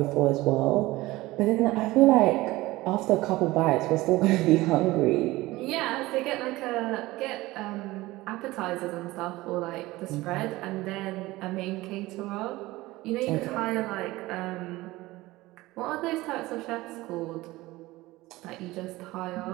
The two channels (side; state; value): left; quieter; 19.1 dB